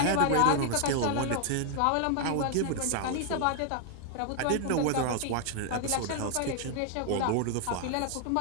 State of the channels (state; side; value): different; both; correlation 0.00